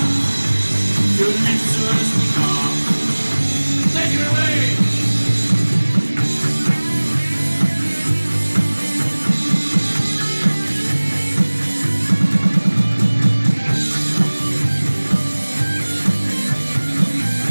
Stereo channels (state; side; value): inverted; both; correlation -1.00